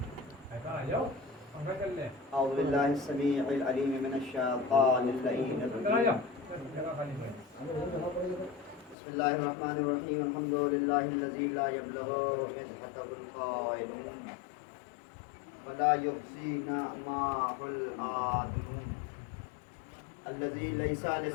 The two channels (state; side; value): drops out; right; at 9.0 s